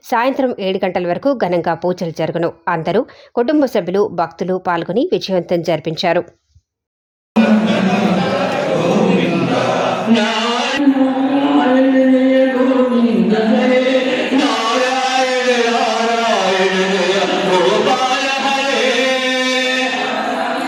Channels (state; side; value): identical; both; correlation 1.00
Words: సాయంత్రం 7 గంటల వరకు ఘనంగా పూజలు జరుగును. అందరూ కుటుంబ సభ్యులు, భక్తులు పాల్గొని విజయవంతం జరిపించారు.